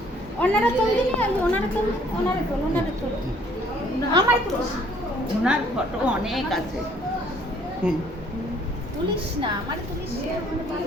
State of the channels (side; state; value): both; normal; correlation 0.61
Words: ওনারা চলছে না ওনারা চল ওনারা চল আমার পুলিশ ওনার ফটো অনেক আছে পুলিশ না আমার পুলিশ